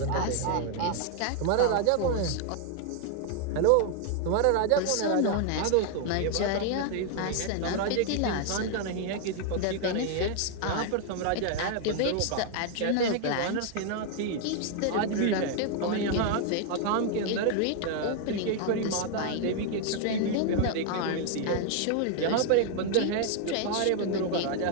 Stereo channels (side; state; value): both; different; correlation 0.00